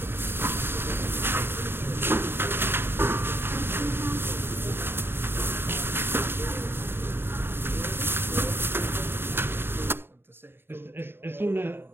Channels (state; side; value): late; left; 0.11 ms